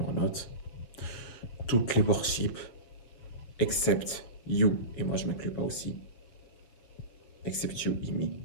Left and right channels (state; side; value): late; right; 7.4 ms